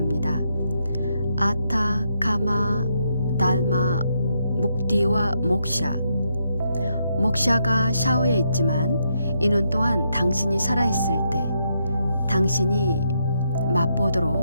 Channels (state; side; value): inverted; both; correlation -0.79